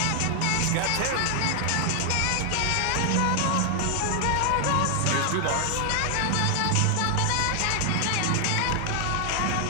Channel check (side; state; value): both; different; correlation 0.00